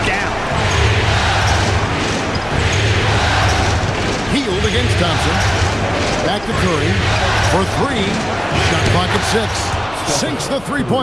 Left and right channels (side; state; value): left; noise; hum, 21 dB below the sound